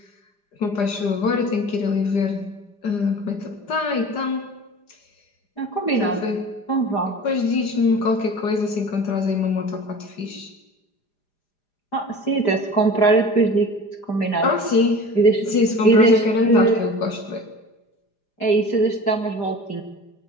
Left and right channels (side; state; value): right; late; 4.9 ms